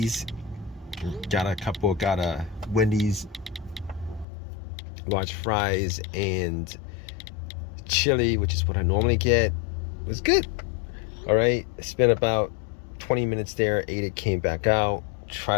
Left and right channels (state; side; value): drops out; right; at 4.2 s